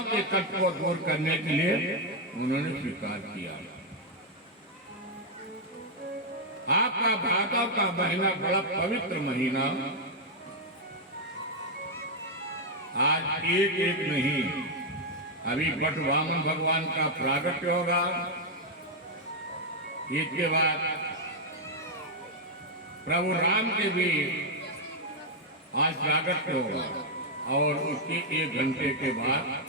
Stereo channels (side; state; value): both; normal; correlation -0.01